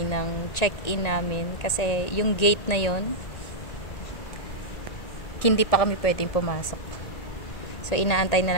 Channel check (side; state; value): right; late; 1.9 ms